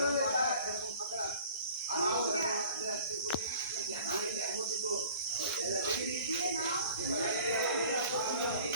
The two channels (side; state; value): both; inverted; correlation -0.47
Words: এরকম ফাঁকা দিয়ে নাও।